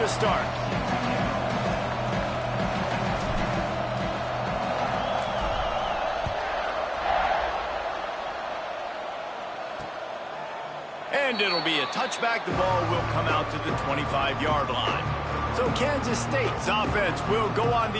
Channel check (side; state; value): both; identical; correlation 1.00